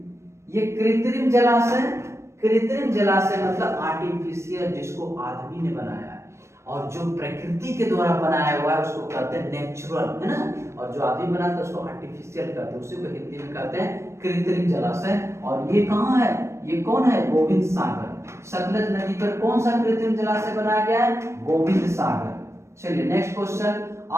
ये कृत्रिम जलाशय मतलब आर्टिफिशियल, जिसको आदमी ने बनाया है, और जो प्रकृति के द्वारा बनाया हुआ है उसको कहते हैं नेचुरल, है ना। और जो आदमी बनाता है उसको आर्टिफिशियल कहते हैं, उसी को हिंदी में कहते हैं कृत्रिम जलाशय। और ये कहाँ है, ये कौन है, गोविंद सागर। सतलज नदी पर कौन सा कृत्रिम जलाशय बनाया गया है, गोविंद सागर। चलिए नेक्स्ट क्वेश्चन,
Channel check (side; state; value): left; late; 0.13 ms